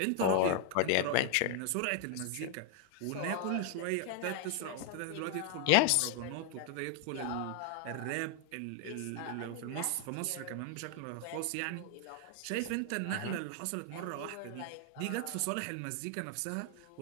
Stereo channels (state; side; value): different; both; correlation 0.00